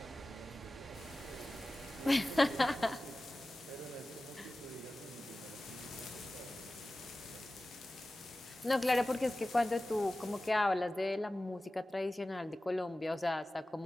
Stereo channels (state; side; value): normal; both; correlation 0.96